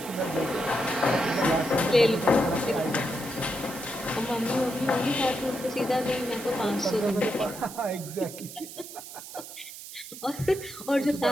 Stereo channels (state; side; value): noise; right; hiss, 13 dB below the sound